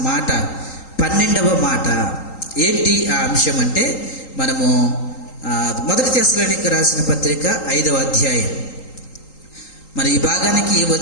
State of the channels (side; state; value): right; late; 3.8 ms